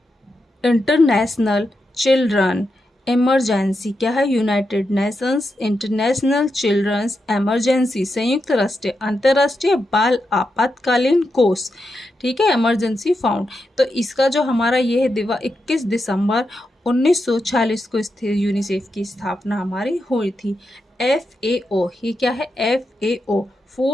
International Children Emergency. क्या है? United Nations International Children's Emergency, संयुक्त राष्ट्र अंतर्राष्ट्रीय बाल आपातकालीन कोष, ठीक है, इमरजेंसी फाउंड। तो इसका जो हमारा ये है 21 दिसंबर 1946 को यूनिसेफ की स्थापना हमारी हुई थी। FAO, ये क्या है? FAO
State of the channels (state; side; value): normal; both; correlation 0.87